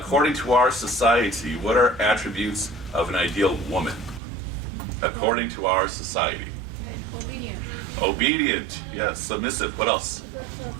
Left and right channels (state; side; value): drops out; left; at 4.2 s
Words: to our society, what are attributes of an ideal woman? According to our society. Obedient. Obedient, yes. Submissive. What else?